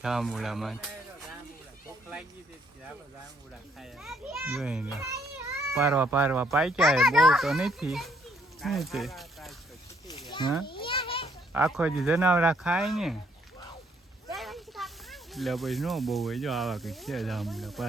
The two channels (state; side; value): normal; both; correlation 0.68